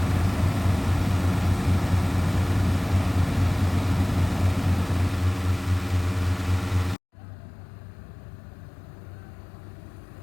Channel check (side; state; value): right; drops out; at 7.0 s